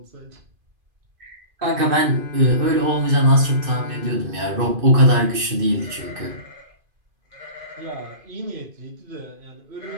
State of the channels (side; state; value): left; late; 2.5 ms